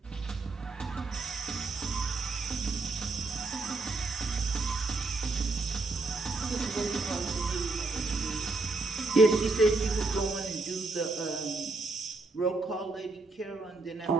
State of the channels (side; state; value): left; quieter; 3.5 dB